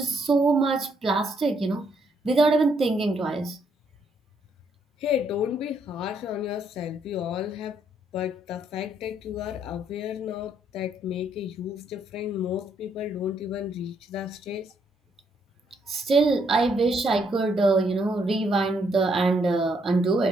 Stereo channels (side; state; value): both; normal; correlation 0.72